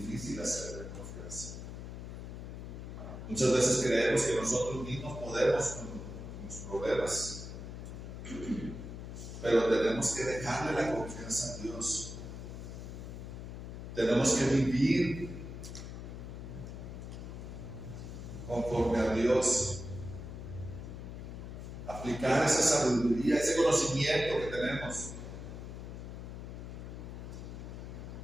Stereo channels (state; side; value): noise; left; hum, 9 dB below the sound